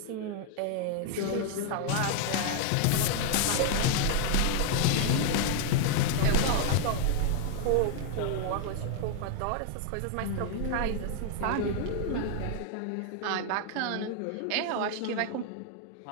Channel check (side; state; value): both; different; correlation 0.00